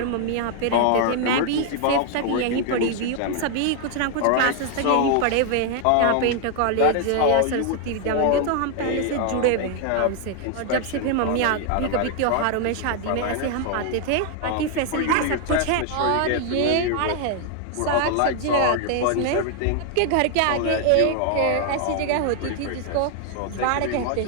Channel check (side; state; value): both; different; correlation 0.00